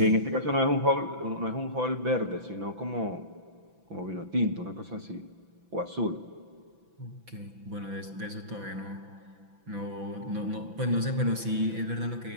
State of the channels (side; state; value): left; late; 6.0 ms